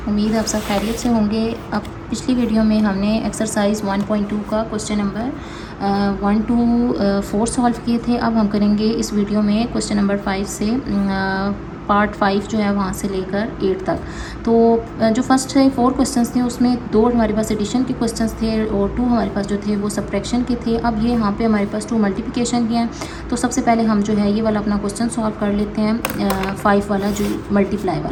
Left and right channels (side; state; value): both; identical; correlation 1.00